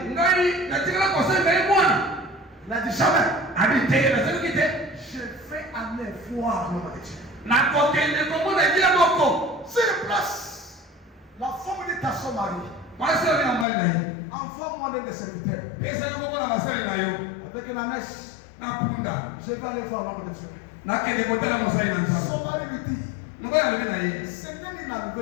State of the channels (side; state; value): right; drops out; at 13.7 s